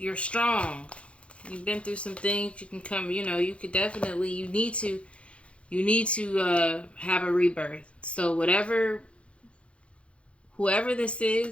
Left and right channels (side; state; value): right; late; 0.060 ms